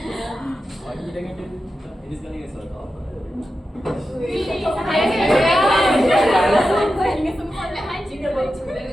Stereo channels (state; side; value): normal; both; correlation 0.91